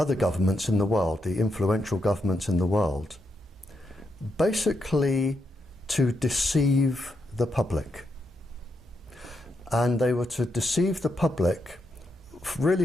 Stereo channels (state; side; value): normal; both; correlation 0.81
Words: governments in the world, the influential governments in the world, basically to deceive the public. And they were to deceive the public really